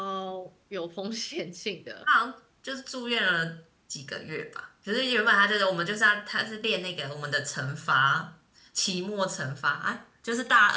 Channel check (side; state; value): both; identical; correlation 1.00